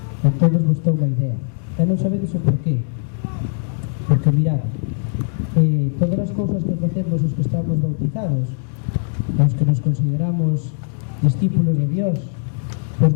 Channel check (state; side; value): silent; right; digital silence